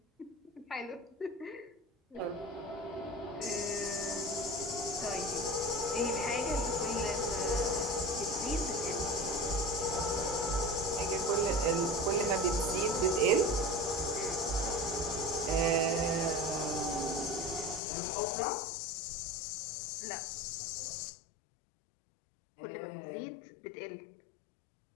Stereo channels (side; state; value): right; drops out; at 17.8 s